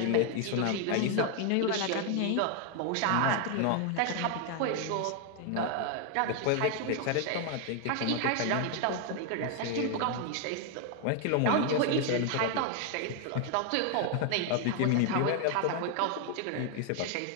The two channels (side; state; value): both; different; correlation 0.00